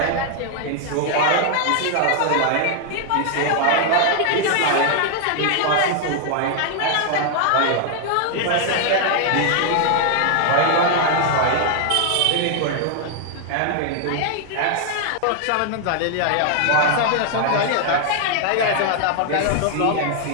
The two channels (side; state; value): both; different; correlation 0.00